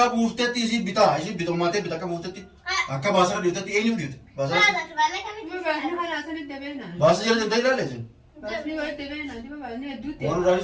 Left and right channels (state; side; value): identical; both; correlation 1.00